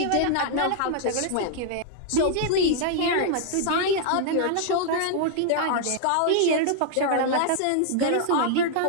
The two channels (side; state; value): both; different; correlation 0.00